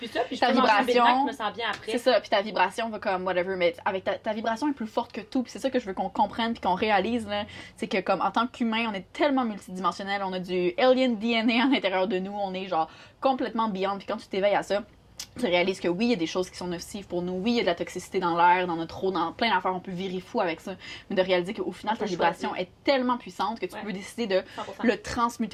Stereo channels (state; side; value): identical; both; correlation 1.00